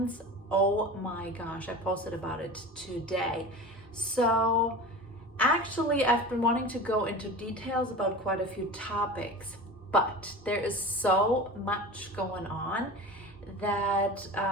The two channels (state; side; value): normal; both; correlation 0.33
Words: oh my gosh, I posted about it today. So actually, I've been wanting to go into details about quite a few topics, but there is so much going on that